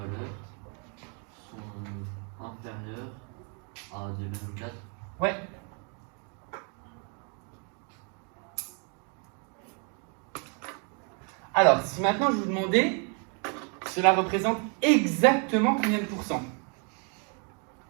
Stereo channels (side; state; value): left; quieter; 37.9 dB